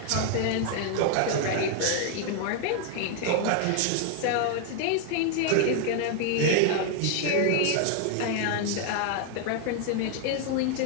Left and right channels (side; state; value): both; different; correlation 0.00